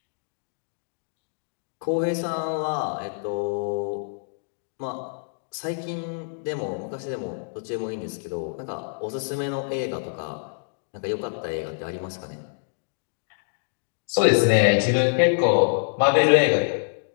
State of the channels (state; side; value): silent; right; digital silence